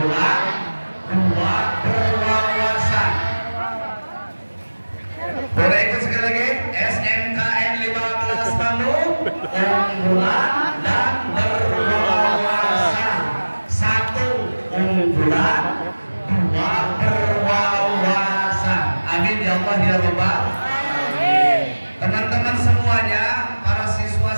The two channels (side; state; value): both; inverted; correlation -1.00